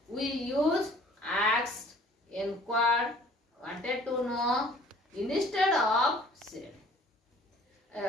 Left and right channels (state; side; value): normal; both; correlation 0.54